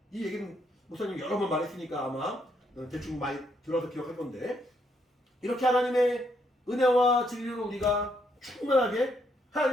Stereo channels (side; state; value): both; normal; correlation 0.74